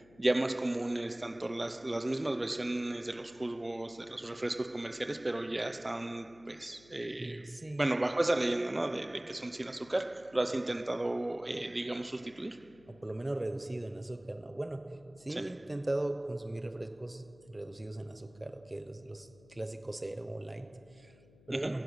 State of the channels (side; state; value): left; noise; hum, 25 dB below the sound